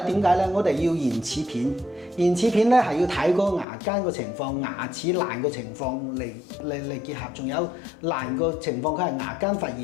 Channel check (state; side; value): drops out; right; at 3.7 s